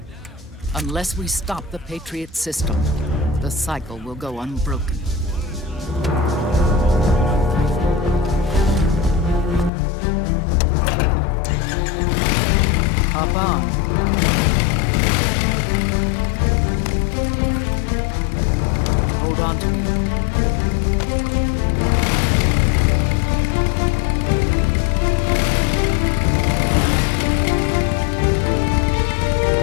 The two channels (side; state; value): right; drops out; at 9.7 s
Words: Unless we stop the Patriot system, the cycle will go unbroken. Hop on. Hold on to me.